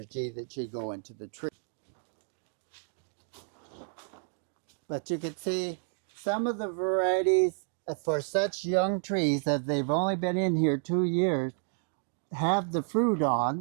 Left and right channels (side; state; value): left; silent; digital silence